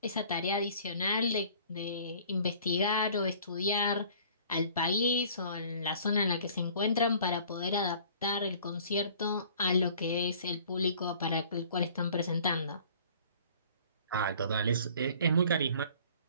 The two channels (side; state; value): both; inverted; correlation -0.51